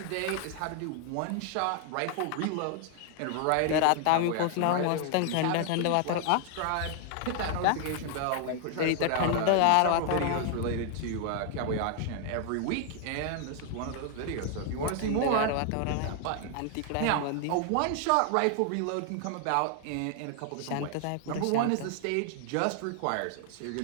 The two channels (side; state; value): both; different; correlation 0.00